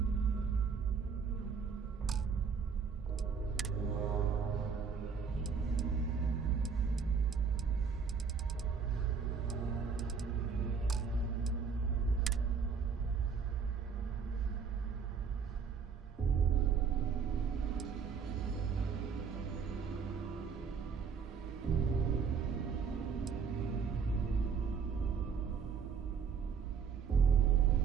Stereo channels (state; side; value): quieter; left; 6.1 dB